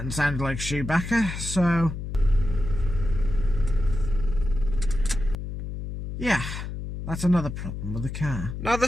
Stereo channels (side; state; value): left; noise; hum, 6 dB below the sound